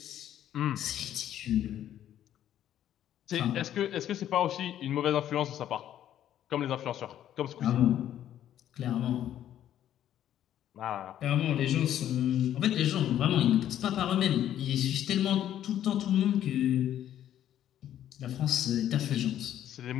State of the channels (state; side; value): quieter; right; 11.2 dB